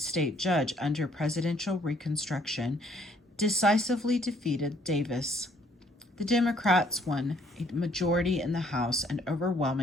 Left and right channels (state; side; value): normal; both; correlation 0.64